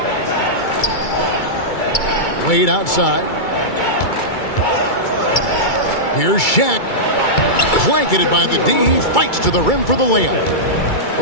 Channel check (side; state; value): right; late; 2.3 ms